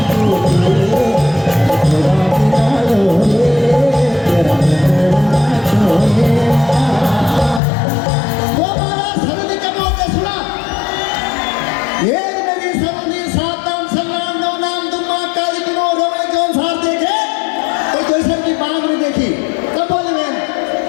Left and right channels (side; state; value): right; drops out; at 7.6 s